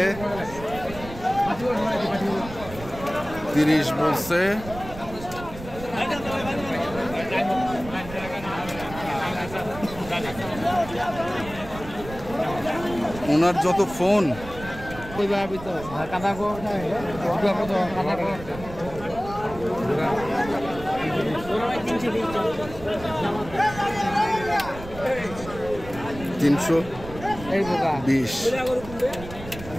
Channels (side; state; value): right; noise; rumble, 13 dB below the sound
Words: 30 বলছে। ওনার যত ফোন 320।